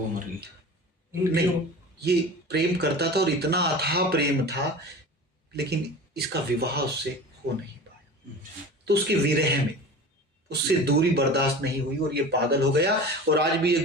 मर गई। नहीं ये प्रेम करता था और इतना अथाह प्रेम था, लेकिन इसका विवाह उससे हो नहीं पाया। तो उसके विरह में उससे दूरी बर्दाश्त नहीं हुई और ये पागल हो गया। और आज भी ये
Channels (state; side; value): normal; both; correlation 0.35